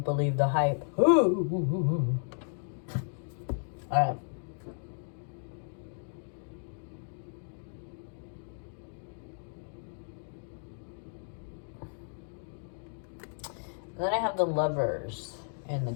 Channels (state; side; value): silent; right; digital silence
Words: believe the hype. All right. Then I have the Lovers in the